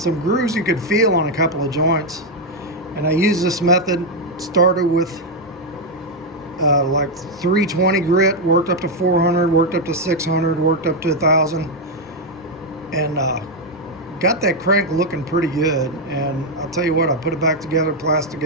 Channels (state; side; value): normal; both; correlation 0.02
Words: grooves you could feel on a couple of joints. And I used this method, started with like 320 grit, worked up to 400, worked up to 600, worked up to 1000, and got that crank looking pretty good. And I'll tell you what, I put it back together, plastic